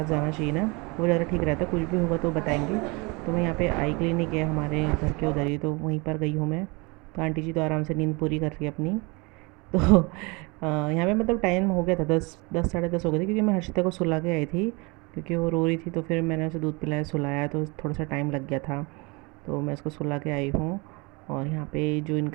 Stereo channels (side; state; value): left; quieter; 27.5 dB